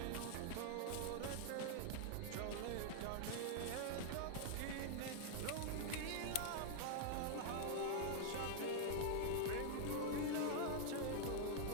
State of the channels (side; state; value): both; different; correlation -0.01